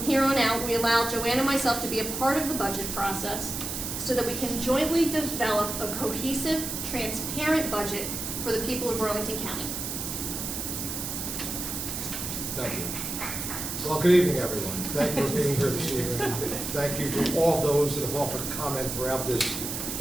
here on out, we allow Joanne and myself to be a part of the budget process so that we can jointly develop a cohesive, transparent budget for the people of Burlington County. Thank you. Well, good evening, everyone. Thank you for being here this evening. Thank you to all those that have offered a comment throughout this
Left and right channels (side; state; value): right; noise; hiss, 4 dB below the sound